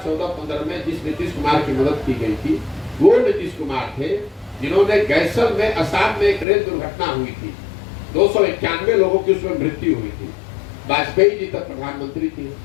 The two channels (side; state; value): right; drops out; at 6.5 s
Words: में जिस नीतीश कुमार की मदद की गई थी वो नीतीश कुमार थे जिन्होंने गैसल में असम में एक रेल दुर्घटना हुई थी, 291 लोगों की उसमें मृत्यु हुई थी। वाजपेयी जी तक प्रधानमंत्री थे।